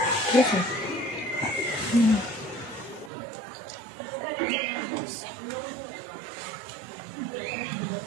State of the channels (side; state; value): left; drops out; at 3.1 s